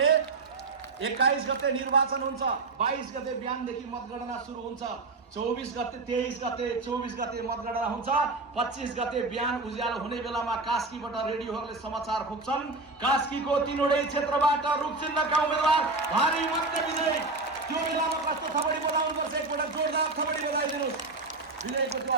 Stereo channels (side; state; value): left; quieter; 3.4 dB